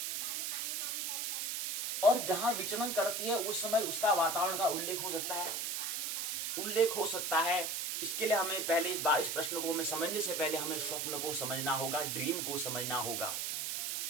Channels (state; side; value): noise; right; hiss, 1 dB below the sound